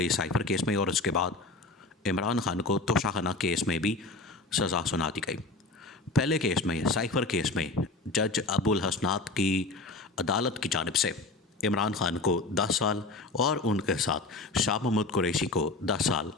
साइफर केस में और उसके बाद इमरान खान को तोशाखाना केस में भी सज़ा सुना दी गई। पहले केस में, साइफर केस में, जज अबुल हसनात की अदालत की जानिब से इमरान खान को 10 साल और उनके साथ शाह महमूद कुरैशी को 10 साल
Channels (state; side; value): quieter; right; 3.3 dB